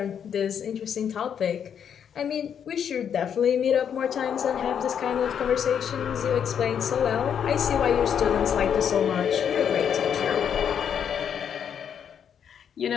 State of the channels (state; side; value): quieter; right; 8.2 dB